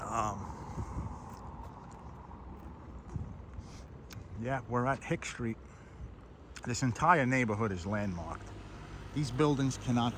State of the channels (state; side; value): identical; both; correlation 1.00